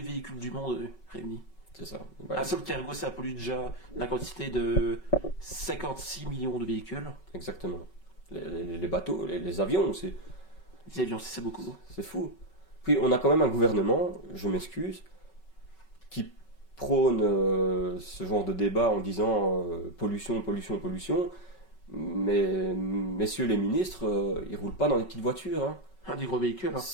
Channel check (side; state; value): right; late; 5.3 ms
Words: véhicules du monde réunis. c'est ça. Ouais, Un seul cargo, ça pollue déjà la quantité de 56 millions de véhicules. exactement. Les bateaux, les avions, Les avions, c'est beaucoup. c'est fou. Puis on a quand même un gouvernement, je m'excuse, qui prône ce genre de débat en disant pollution, pollution, pollution. Mais messieurs les ministres, ils roulent pas dans des petites voitures, hein. Un des gros véhicules. Hein.